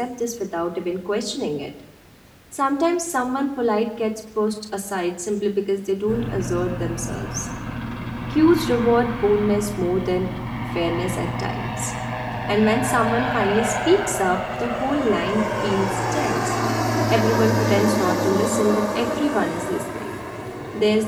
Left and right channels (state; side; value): identical; both; correlation 1.00